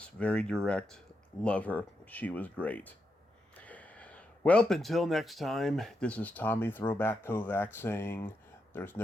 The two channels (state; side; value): normal; both; correlation 0.84